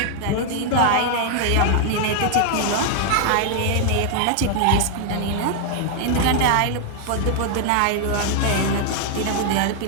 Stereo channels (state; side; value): different; both; correlation 0.00